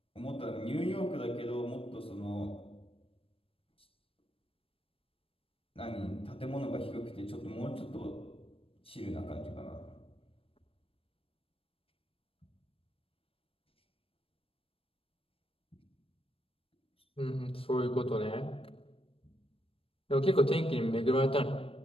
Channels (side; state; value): right; late; 0.27 ms